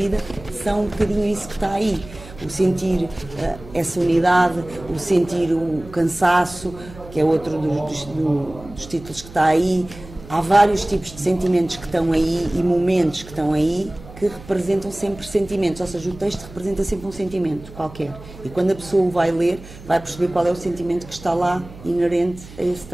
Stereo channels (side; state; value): right; noise; hum, 17 dB below the sound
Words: são um bocadinho isso que está aí, o sentir essa unidade, o sentir o cansaço, que é outro dos títulos que está aí. Há vários tipos de sentimentos que estão aí e momentos que estão aí que representam sempre sentimentos, ou seja, o texto representa sempre um sentimento qualquer. E quando a pessoa o vai ler, vai perceber qual é o sentimento que está lá inerente a esse